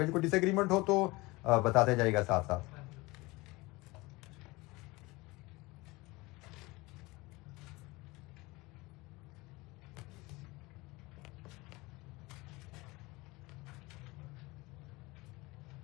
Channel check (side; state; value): right; quieter; 22.5 dB